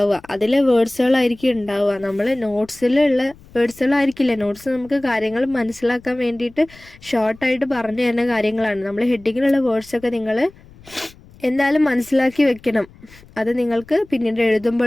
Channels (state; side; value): noise; left; rumble, 24 dB below the sound